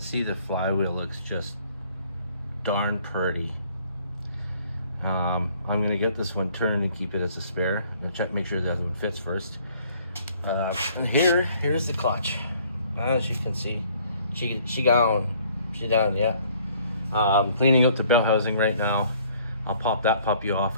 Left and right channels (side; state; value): both; inverted; correlation -0.59